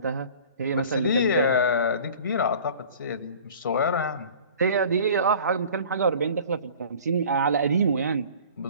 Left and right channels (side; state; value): both; inverted; correlation -0.45